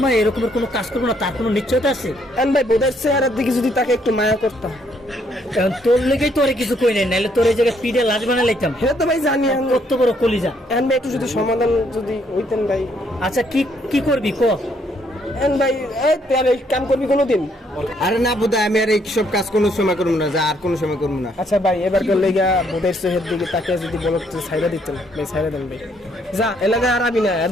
এরকমের কোনো কাজ করবো না, তার কোনো নিশ্চয়তা আছে? এখন ভাই বোধার চেহারার দিকে যদি তাকে একটু মায়া করতাম। এখন তোর লেগেই তোরে কিছু কই নাই, নাহলে তোর এই জায়গায় পিঠে লাশ বানা লাইতাম। হ্যাঁ তো ভাই জানি। এখন কত বড় কলিজা। এখন ভাই একটু যদি সমাধান যদি হইতেন ভাই। আচ্ছা কি কি করবি ক? এখন ভাই, এই তুই আর এই কাম করবি কোনোদিন? আরে না বোধহয়, আমি আর এই সব কাজ কোনো সময় করবো না, যা আর কোনো সময় করবো না। আচ্ছা ভাই, এবার লেগা বোধের চেহার দিকে তাকে যদি বলো ছাইরা দিতেন ভাই, ছাইরা দেন ভাই। যা এলাকায় আর আবি না, আর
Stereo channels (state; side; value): normal; both; correlation 0.70